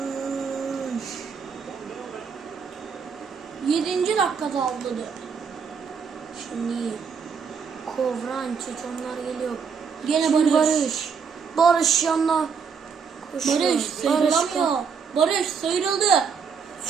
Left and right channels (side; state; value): left; quieter; 6.1 dB